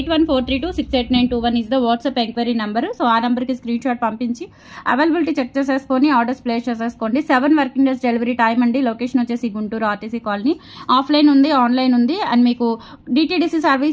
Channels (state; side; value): identical; both; correlation 1.00